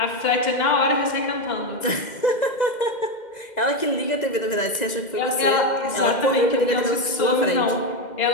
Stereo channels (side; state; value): right; late; 1.9 ms